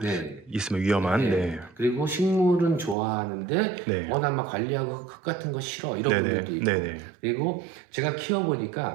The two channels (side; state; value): left; drops out; at 3.0 s